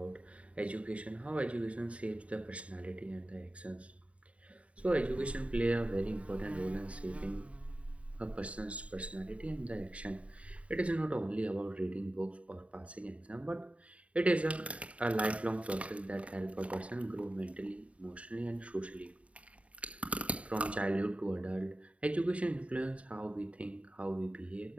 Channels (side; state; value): left; late; 0.064 ms